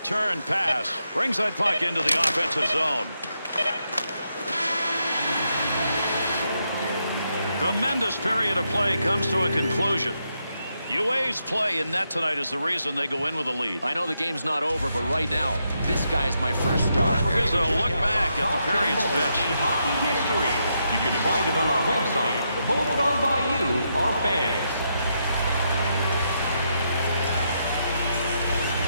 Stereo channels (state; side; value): inverted; both; correlation -0.81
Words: pass. Brings that puck into the offensive zone. Tremendous period of play comes to a conclusion. UA's play in net tonight is the reason they go in with a lead. I know the game's not over, but right now, this guy's my first star. Here's a look back at the period's best. Hockey history. You can find it on our website, voted on by you, our fans.